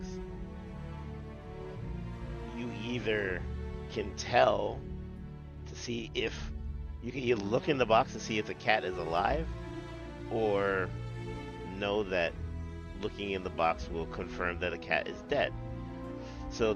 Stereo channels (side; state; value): both; identical; correlation 1.00